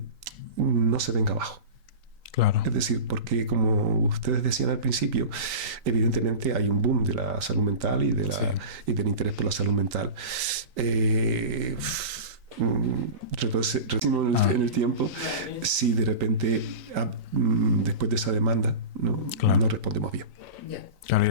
no se venga abajo. Claro. Es decir, porque como ustedes decían al principio, evidentemente hay un boom de la salud mental y del interés por la salud mental. Retrocedimos en el tiempo, si de repente después de esa demanda no respondemos bien. Claro, y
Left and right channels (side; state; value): left; late; 3.9 ms